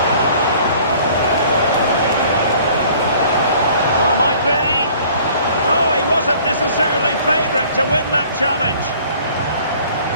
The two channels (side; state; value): both; inverted; correlation -0.53